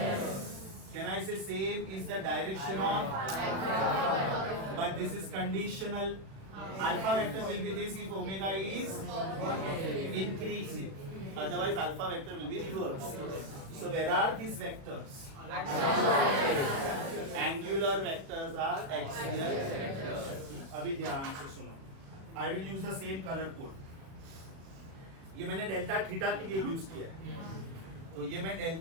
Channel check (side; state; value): left; late; 36 ms